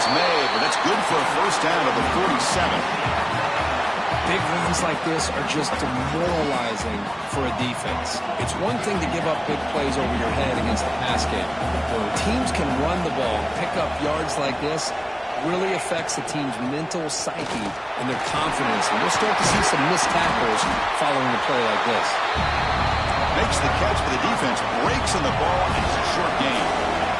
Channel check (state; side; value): identical; both; correlation 1.00